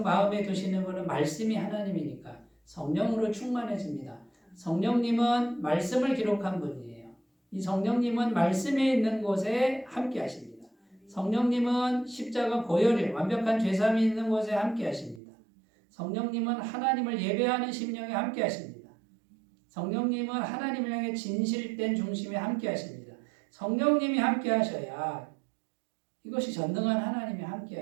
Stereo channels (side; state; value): left; drops out; at 15.2 s